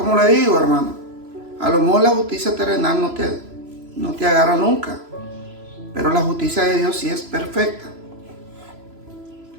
le digo, hermano, a lo mejor la justicia terrenal no te agarra nunca. Pero la justicia de Dios sí es perfecta.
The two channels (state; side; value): late; left; 3.0 ms